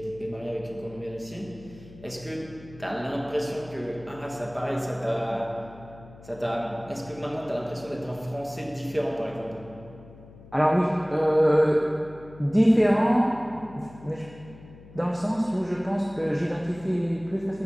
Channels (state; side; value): noise; left; hum, 20 dB below the sound